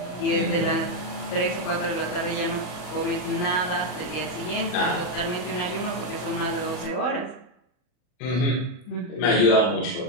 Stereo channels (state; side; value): late; right; 40 ms